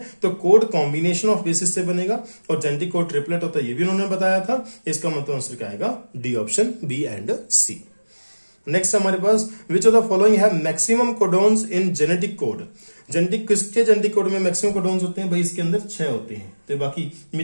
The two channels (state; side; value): inverted; both; correlation -1.00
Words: तो कोड कॉम्बिनेशन ऑफ बेसिस से बनेगा और जेनेटिक कोड ट्रिपलेट होता है, ये भी उन्होंने बताया था। इसका मतलब आंसर क्या आएगा? D option, B and C. Next हमारे पास विच ऑफ द फॉलोइंग है maximum codons in genetic code. Genetic किसके जेनेटिक कोड में मैक्सिमम कोडोन्स होते हैं? भाई इसके अंदर 6 होते हैं, तो बाकी